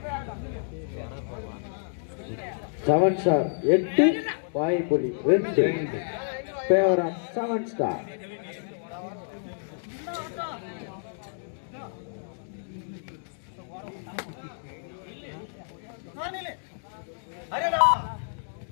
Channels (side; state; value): right; silent; digital silence